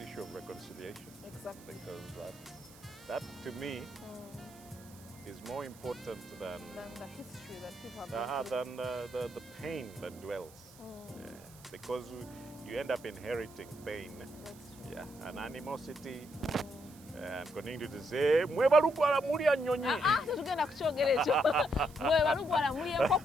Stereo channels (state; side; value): noise; right; hiss, 22 dB below the sound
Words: issue of reconciliation. Exactly. Because that to me is more important than the history that people have than the pain that dwells. Yeah. Because you end up inheriting pain. Yeah, and animosity. And continue to say, mwebalugwala mulya nnyonyi. Tetugenda kukyogera ekyo. Mwebalugwala mulya